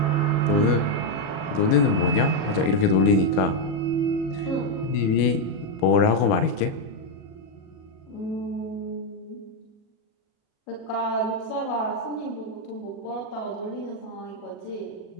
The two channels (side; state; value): right; late; 37 ms